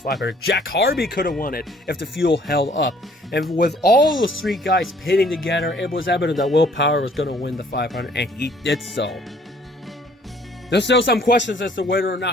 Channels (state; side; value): normal; both; correlation 0.59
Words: 500. Jack Harvey could have won it if the fuel held up. And with all the three guys pitting together, it was evident that Will Power was going to win the 500, and he did so. There's still some questions as to whether or